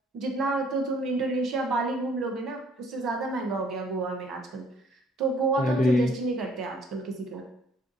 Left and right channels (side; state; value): both; normal; correlation 0.61